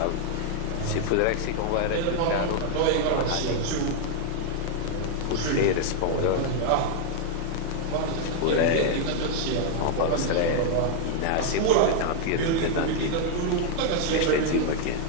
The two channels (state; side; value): different; both; correlation 0.00